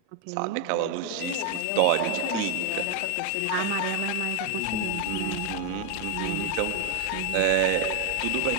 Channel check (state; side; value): different; both; correlation 0.01